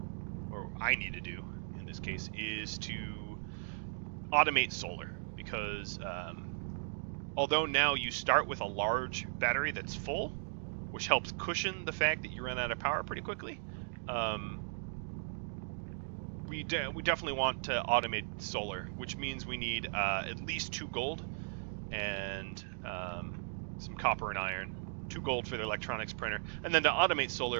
or I need to do in this case, is to automate solar, because although now you start with a large battery that's full, which helps cushion the fact that you run out of power pretty quickly, we definitely want to automate solar, which means we need at least 2 gold and some copper and iron. 2 gold for the electronics printer, and then to automate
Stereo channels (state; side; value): silent; left; digital silence